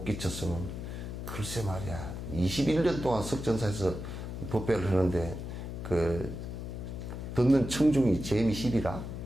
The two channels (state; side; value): noise; left; hum, 7 dB below the sound